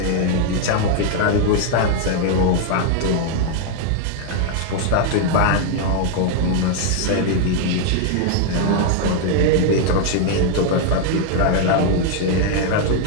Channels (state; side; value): different; both; correlation 0.00